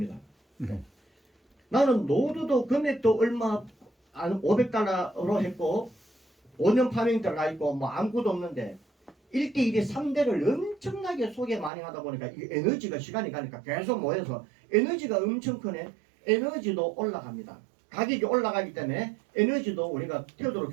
나는 노드도 금액도 얼마 한 500달러로 했고 5년 파밍 들어가 있고 뭐 아무것도 없는데 1대1에 3대를 엄청나게 소개 많이 하다 보니까 이 에너지가 시간이 가니까 계속 모여서 에너지가 엄청 크네. 에너지도 올라갑니다. 가격이 올라가기 때문에 에너지도 우리가 태도로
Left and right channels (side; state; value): left; drops out; at 11.7 s